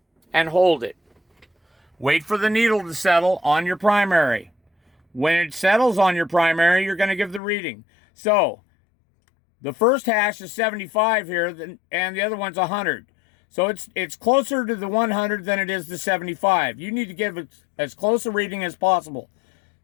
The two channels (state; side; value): drops out; right; at 7.4 s